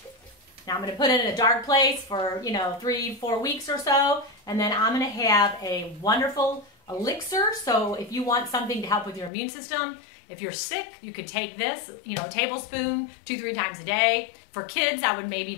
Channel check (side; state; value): right; drops out; at 9.3 s